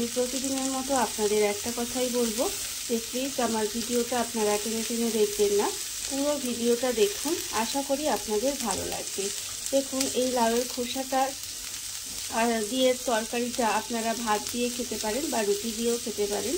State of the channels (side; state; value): both; identical; correlation 1.00